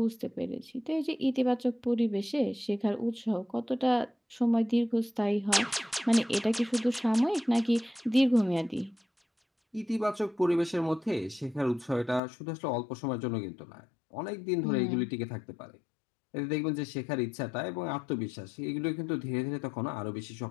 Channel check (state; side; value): drops out; right; at 12.2 s